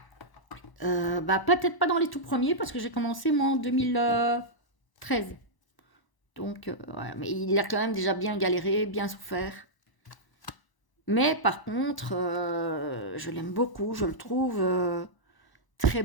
Bah, peut-être pas dans les tout premiers, parce que j'ai commencé moi en 2013. Donc, ouais, mais il a quand même déjà bien galéré, bien souffert. Mais par contre, je l'aime beaucoup, je le trouve très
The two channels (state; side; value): late; right; 1.0 ms